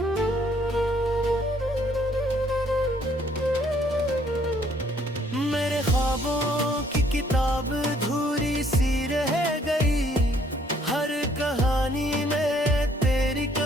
मेरे ख्वाबों की किताब धूरी सी रह गई, हर कहानी में तेरी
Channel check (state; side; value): normal; both; correlation 0.64